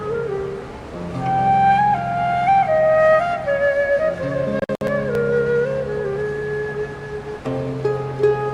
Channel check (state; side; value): identical; both; correlation 1.00